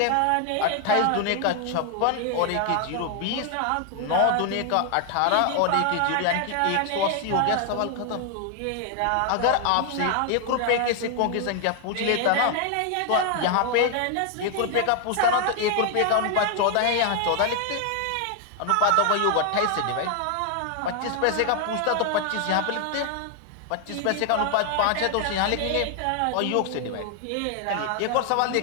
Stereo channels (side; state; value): both; different; correlation 0.00